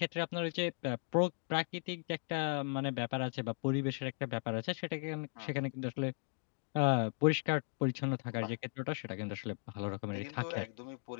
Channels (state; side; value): silent; right; 53 dB below the other